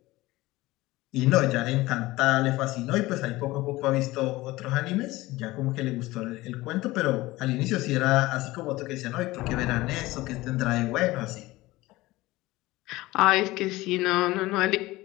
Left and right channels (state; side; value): quieter; right; 19.1 dB